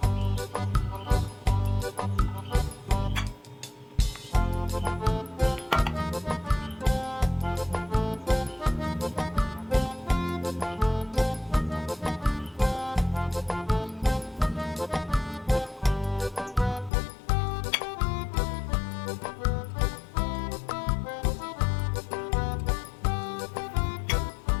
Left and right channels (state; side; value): drops out; right; at 16.9 s